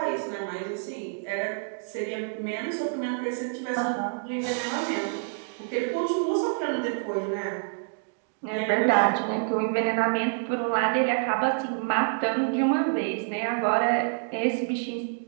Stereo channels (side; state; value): left; silent; digital silence